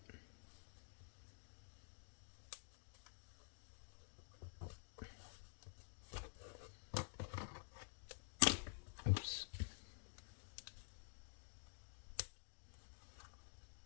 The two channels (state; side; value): silent; right; digital silence